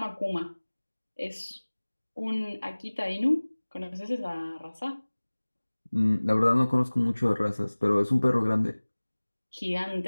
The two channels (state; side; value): inverted; both; correlation -1.00